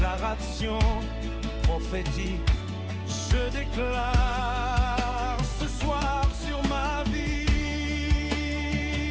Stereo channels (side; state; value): both; identical; correlation 1.00